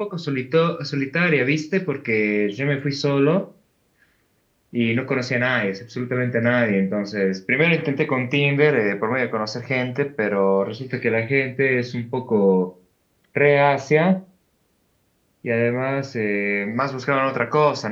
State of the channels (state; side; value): identical; both; correlation 1.00